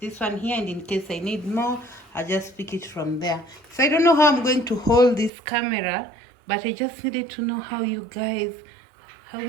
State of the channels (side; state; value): left; drops out; at 5.3 s